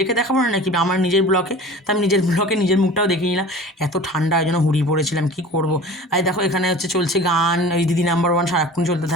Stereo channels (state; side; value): normal; both; correlation 0.39